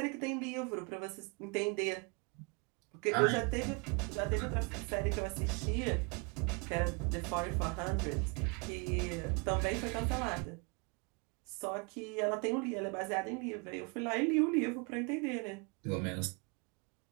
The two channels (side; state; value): left; quieter; 31.2 dB